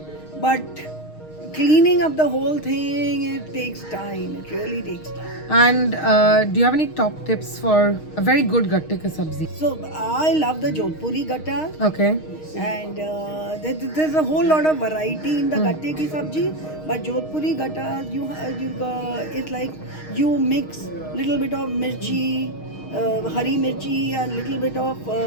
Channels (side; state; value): right; late; 6.4 ms